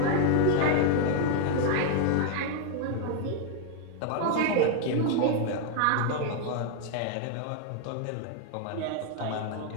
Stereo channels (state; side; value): different; both; correlation 0.00